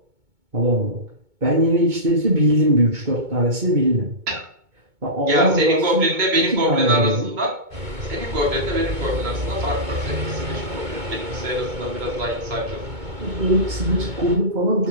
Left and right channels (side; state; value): left; late; 2.2 ms